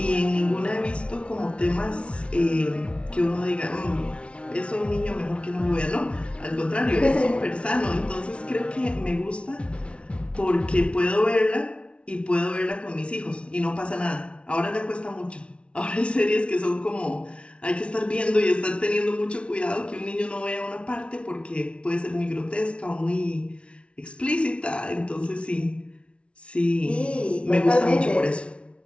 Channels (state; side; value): late; right; 0.060 ms